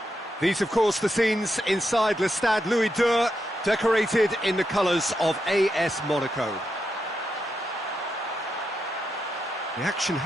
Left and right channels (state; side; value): normal; both; correlation 0.84